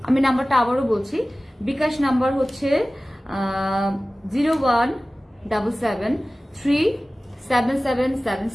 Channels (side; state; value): both; normal; correlation 0.97